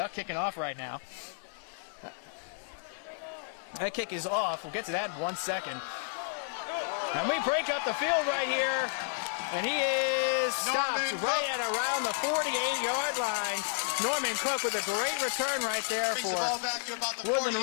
kicking off right now. That kick is off. We'll get to that in 1 second. And we break up the field right here. And he is stopped right at around the 48-yard line. Norman Cook with a great return right there for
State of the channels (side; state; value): right; silent; digital silence